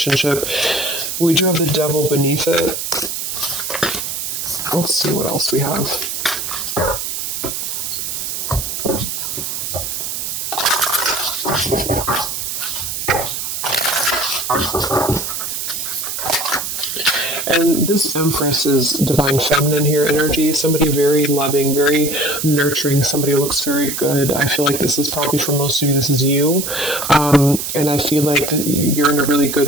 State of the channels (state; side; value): noise; right; hiss, 4 dB below the sound